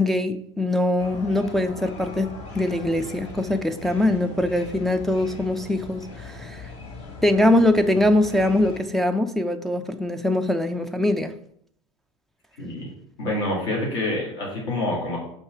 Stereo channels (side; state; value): both; normal; correlation 0.76